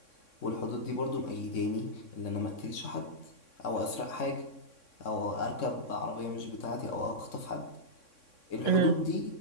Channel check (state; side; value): late; right; 3.6 ms